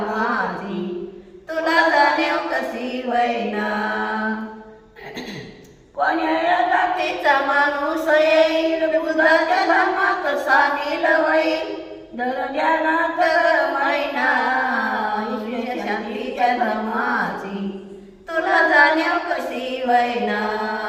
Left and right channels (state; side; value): identical; both; correlation 1.00